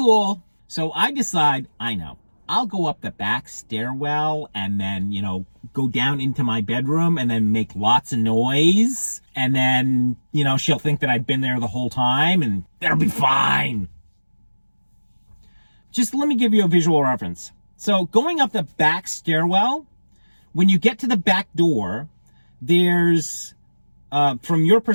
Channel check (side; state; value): both; inverted; correlation -1.00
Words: So I decide, I'll go up the back stairwell and then, go down into my bedroom and then make lots of noise. And then, she'll think that I've been there the whole time and that'll be fine. Just let me give you a visual reference. So going up the back stairwell, when you get to the back door, there's, from your